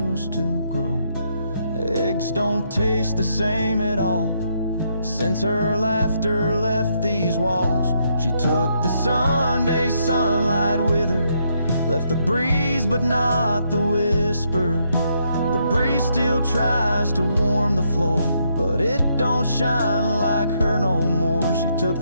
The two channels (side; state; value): both; inverted; correlation -0.75